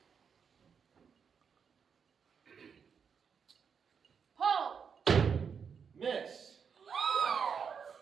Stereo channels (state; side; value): quieter; left; 6.6 dB